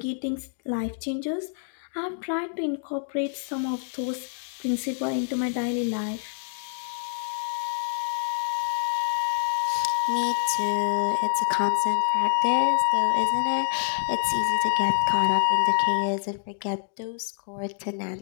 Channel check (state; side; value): silent; right; digital silence